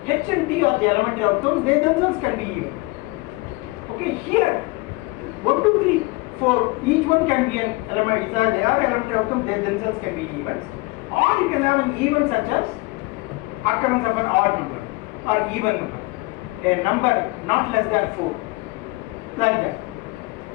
H and T are the elementary outcomes, they themselves can be events. Okay, here 1, 2, 3, 4, each one can be an element, they are elementary outcomes, they themselves can be events. Or you can have an event such as occurrence of an odd number or even number, a number not less than 4, like that.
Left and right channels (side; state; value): right; quieter; 24.5 dB